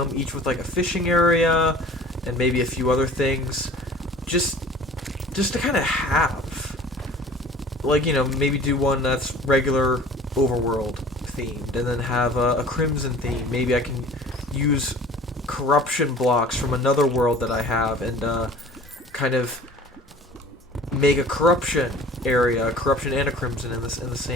each with like a fishing area and maybe a few other things, just to kind of have, like, you know, maybe do one that's regular overworld themed, and then have a crimson theme. Maybe I can use corruption blocks from another world that I have, and kind of make a corruption area, a corruption and a crimson in the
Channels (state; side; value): normal; both; correlation 0.45